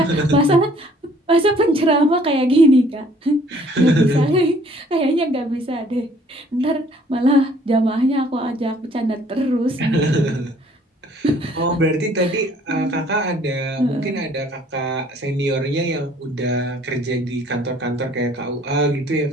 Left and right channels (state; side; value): normal; both; correlation 0.58